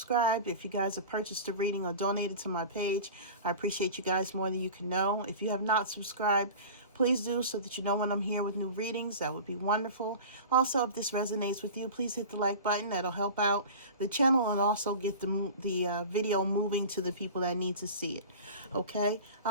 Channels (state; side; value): inverted; both; correlation -0.35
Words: If you guys have purchased a reading or donated to my page, I appreciate you guys more than you can know. If you have not subscribed, please do so that you know when I'm here with new readings. That would be wonderful. Also, if this resonates with you, please hit the like button. That'll help out the channel and also get the video moving to the people that need to see it. Okay?